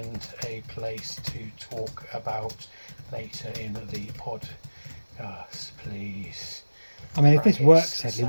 a place to talk about later in the podcast, please? I mean, if this works, Hedley,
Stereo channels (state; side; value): inverted; both; correlation -1.00